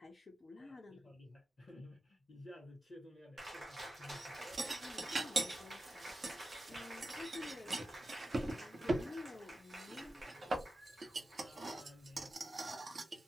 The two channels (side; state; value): both; normal; correlation 0.92